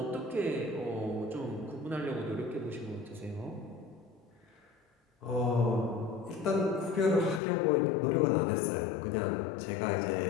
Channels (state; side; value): drops out; right; at 7.4 s